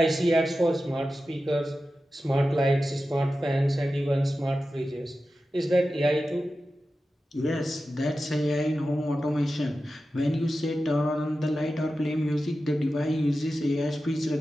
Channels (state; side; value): normal; both; correlation 0.93